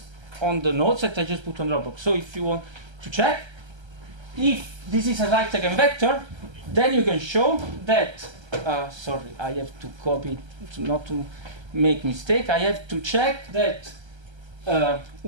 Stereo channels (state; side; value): late; left; 1.3 ms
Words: on the notes that I just put on Dropbox. So if you want to check, if this is a right eigenvector, then you can show that, sorry, I have to copy it not to make mistake. I have to check that